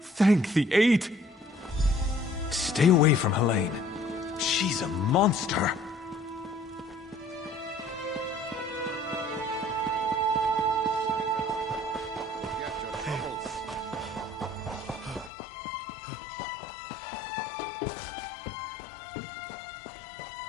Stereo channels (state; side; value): drops out; right; at 15.3 s